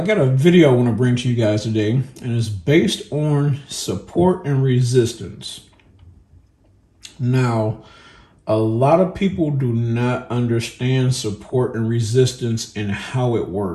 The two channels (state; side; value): identical; both; correlation 1.00